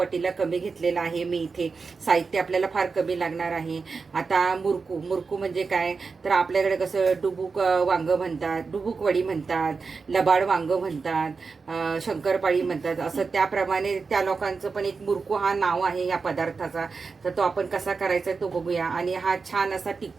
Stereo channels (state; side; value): quieter; left; 4.7 dB